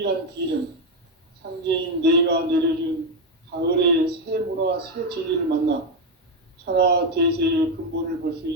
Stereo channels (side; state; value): both; normal; correlation 0.07